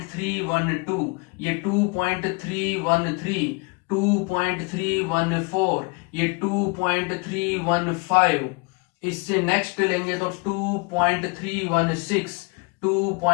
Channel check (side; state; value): right; quieter; 30.0 dB